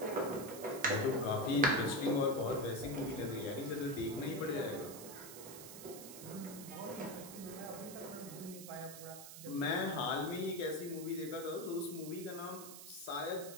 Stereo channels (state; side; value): noise; right; hiss, 12 dB below the sound